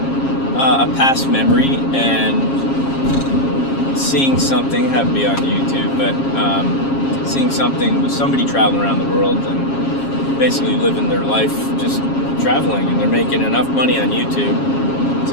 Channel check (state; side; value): late; right; 7.4 ms